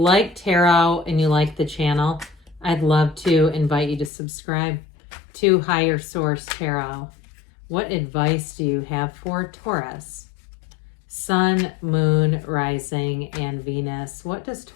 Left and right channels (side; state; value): right; drops out; at 4.1 s